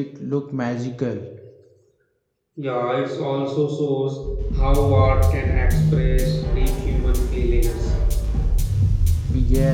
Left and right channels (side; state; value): both; identical; correlation 1.00